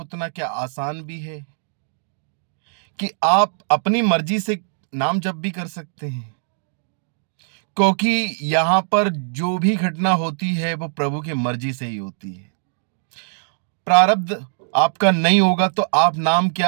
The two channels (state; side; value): silent; left; digital silence